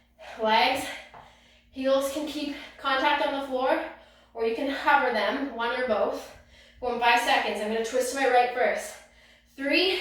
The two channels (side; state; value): both; identical; correlation 1.00